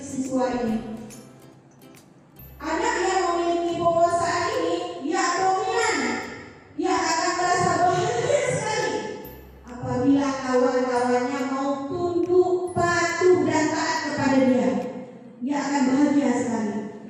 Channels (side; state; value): both; identical; correlation 1.00